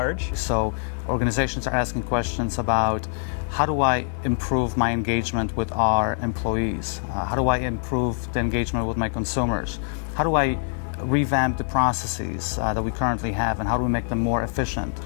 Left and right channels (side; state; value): right; silent; digital silence